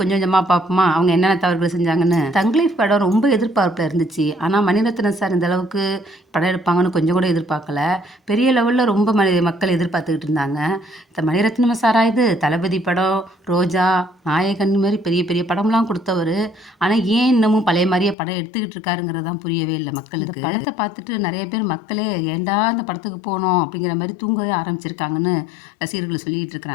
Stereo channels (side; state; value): right; drops out; at 18.2 s